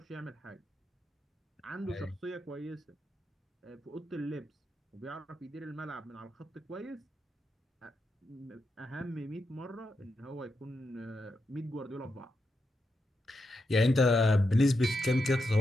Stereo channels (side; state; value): both; normal; correlation 0.85